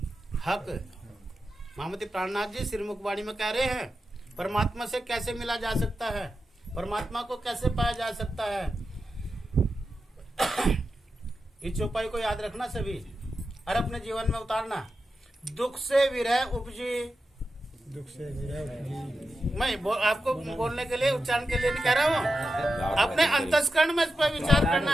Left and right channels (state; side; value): normal; both; correlation 0.90